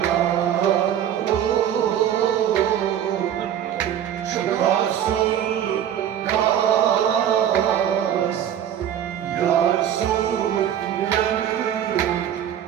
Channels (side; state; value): left; quieter; 10.1 dB